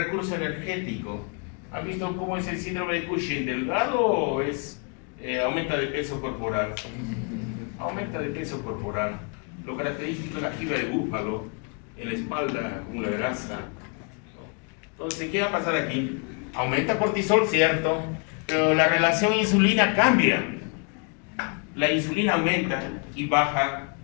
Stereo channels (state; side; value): quieter; right; 36.5 dB